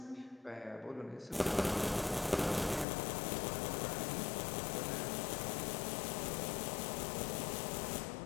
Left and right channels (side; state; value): right; drops out; at 2.9 s